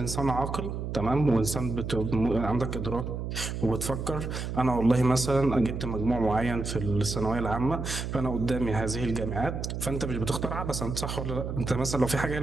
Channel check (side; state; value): right; noise; hum, 4 dB below the sound